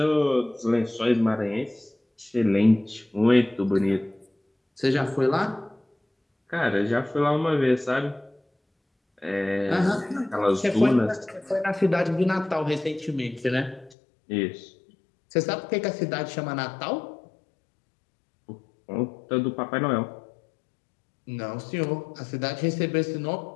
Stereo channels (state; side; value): drops out; right; at 14.0 s